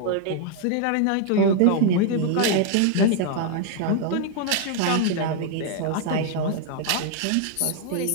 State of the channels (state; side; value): different; both; correlation 0.00